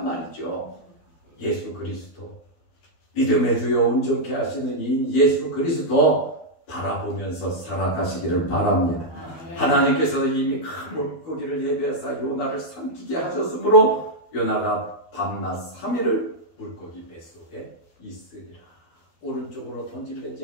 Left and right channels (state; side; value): late; right; 12 ms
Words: 말이죠. 예수 그리스도, 믿음의 주여 온전케 하시는 이 예수 그리스도 바라보면서 살아가시기를 바랍니다. 하나님께서 이미 큰 물고기를 예비하사 요나를 삼키게 하셨으므로 요나가 밤낮 3일을 물고기 뱃속에 있으리라. 오른쪽으로